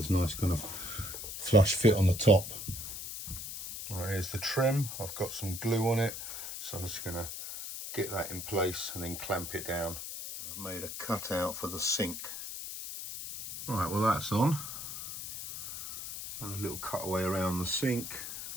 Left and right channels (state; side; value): noise; left; hiss, 8 dB below the sound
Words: a nice kind of flush fit on the top. All right, here's the trim. I've got some glue on it, so I'm just going to get that in place and then clamp it down. I've made a cutout for the sink. Right, well that's on. And a little cutaway around the sink.